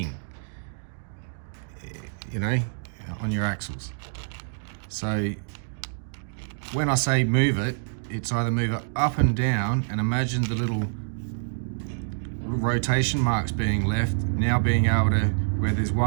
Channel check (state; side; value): silent; left; digital silence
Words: you know, on your axles. So when I say move it, it's either move it up and down, and imagine the little rotation marks being left, now being able to, where there's